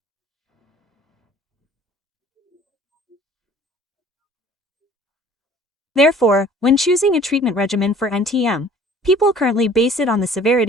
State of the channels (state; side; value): normal; both; correlation 0.51